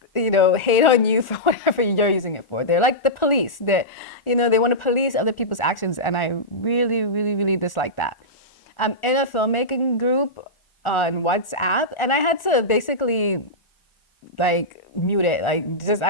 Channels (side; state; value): right; late; 1.4 ms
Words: hate on you for whatever you're using it for. They're like the police. They want to police other people's actions, and I really, really, really dislike that. I'm in a filmmaking group on WhatsApp, and I had to basically like mute it. Like, just